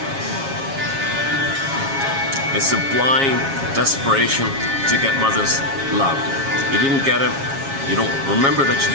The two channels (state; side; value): late; left; 7.3 ms